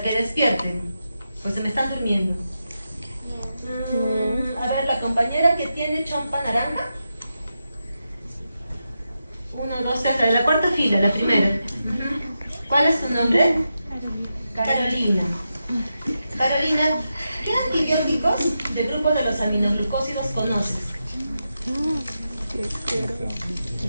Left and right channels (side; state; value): both; inverted; correlation -0.88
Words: que despierten, pues se me están durmiendo. A ver, la compañera que tiene chompa naranja. 1, 2, 3, la cuarta fila, la primera. ¿Cuál es tu nombre? Carolina. Carolina, ¿qué antibióticos del grupo de los aminoglucósidos conoces?